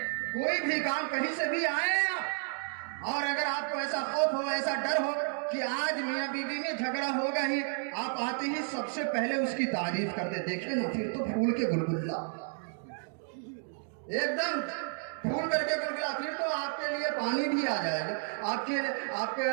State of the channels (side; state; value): left; silent; 57 dB below the other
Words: کوئی بھی کام کہیں سے بھی آئے آپ، اور اگر آپ کو ایسا خوف ہو، ایسا ڈر ہو کہ آج میاں بیوی میں جھگڑا ہوگا ہی، آپ آتے ہی سب سے پہلے اس کی تعریف کر دیں۔ دیکھیں نا، پھر تو پھول کے گلگلہ، ایک دم پھول کر کے گلگلا، پھر تو آپ کے لیے پانی بھی آ جائے گا، آپ کے